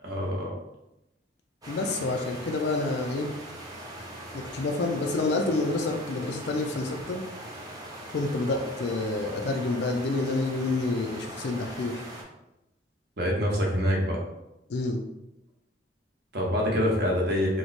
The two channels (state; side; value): normal; both; correlation 0.46